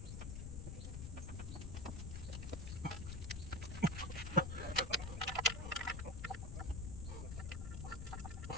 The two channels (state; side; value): noise; left; rumble, 5 dB below the sound